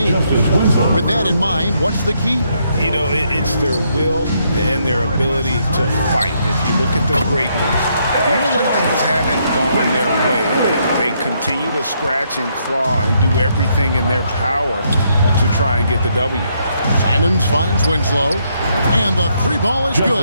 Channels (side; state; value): both; inverted; correlation -0.74